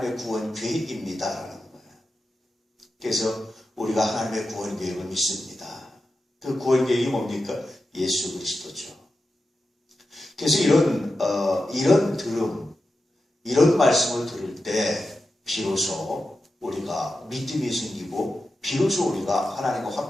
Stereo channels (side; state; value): both; normal; correlation 0.91